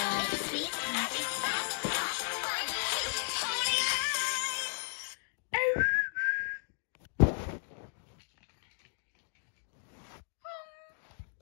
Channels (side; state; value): right; silent; digital silence